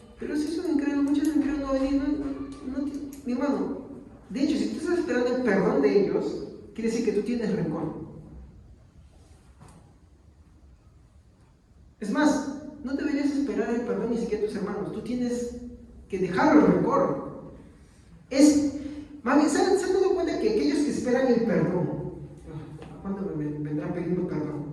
Pero si es un incrédulo, muchos incrédulos no venir, mi hermano. De hecho, si tú estás esperando el perdón de ellos, quiere decir que tú tienes rencor. Es más, no deberías esperar el perdón ni siquiera a tus hermanos. Tú tienes que dejar el rencor. Más bien, ¿se han dado cuenta que aquellos que esperan el perdón, ¿cuándo me vendrán pidiendo perdón?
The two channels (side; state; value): both; identical; correlation 1.00